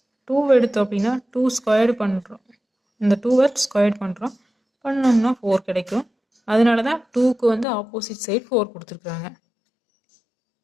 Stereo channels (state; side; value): drops out; right; at 7.7 s